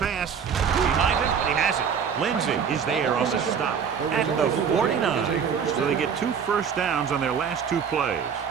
Behind him, and he has it. Lindsey is there on the stop at the 49. So they get 2 first downs on their last 2 plays.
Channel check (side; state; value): left; quieter; 7.0 dB